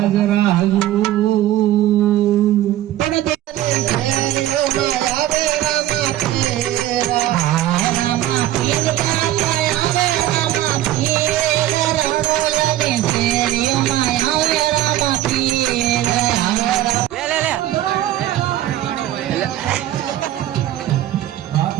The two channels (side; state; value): left; quieter; 13.7 dB